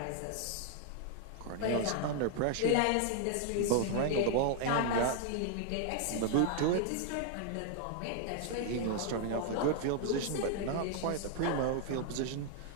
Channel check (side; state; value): both; different; correlation 0.00